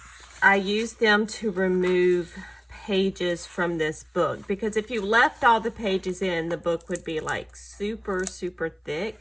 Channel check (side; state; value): both; identical; correlation 1.00